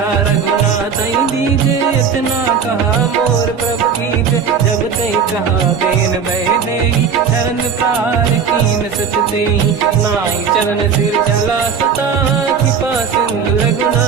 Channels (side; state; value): left; quieter; 6.5 dB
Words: रघुनाथ दीजे, इतना कहा मोर प्रभु कीजे। जब तई कहा देन भय देहि, चरण प्रार कीन सत तेहि। नाई चरण सिर चला सता, कृपा सिंधु